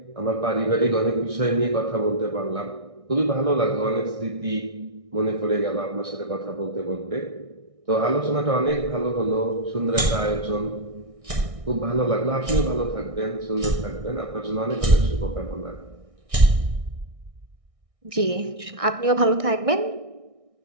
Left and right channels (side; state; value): left; late; 1.6 ms